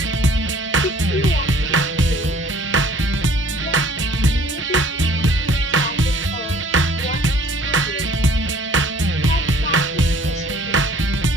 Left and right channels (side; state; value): both; normal; correlation 0.54